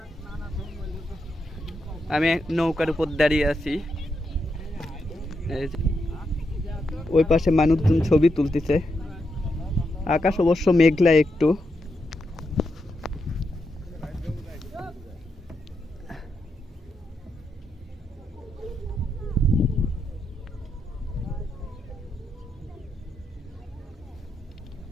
আমি নৌকার উপর দাঁড়িয়ে আছি। ওই পাশে মানুষজন ছবি তুলতেছে। আকাশ অবশ্য মেঘলা একটু।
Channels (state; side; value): normal; both; correlation 0.83